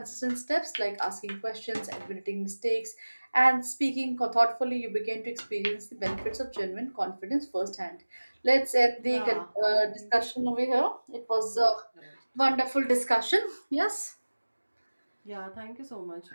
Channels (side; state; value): both; inverted; correlation -1.00